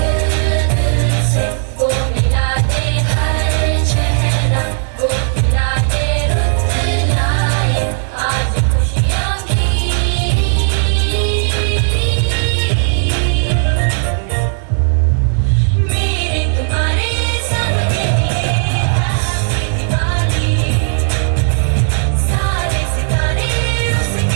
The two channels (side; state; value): left; silent; digital silence